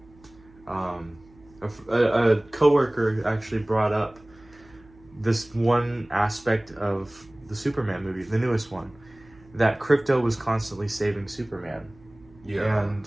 A coworker actually brought up this one aspect of the Superman movie, the newest one, that Krypto was constantly saving Superman. Yeah. And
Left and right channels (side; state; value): right; noise; hum, 26 dB below the sound